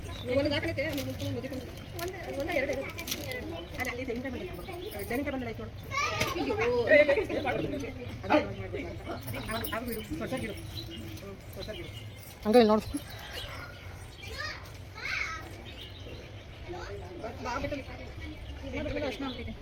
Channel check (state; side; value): identical; both; correlation 1.00